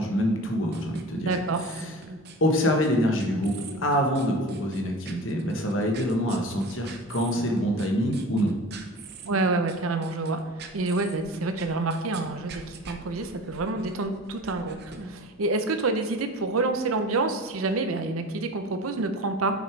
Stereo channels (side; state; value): both; normal; correlation 0.37